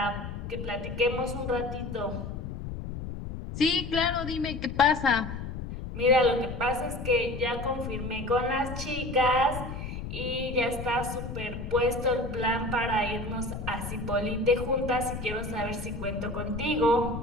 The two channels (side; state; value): left; noise; rumble, 7 dB below the sound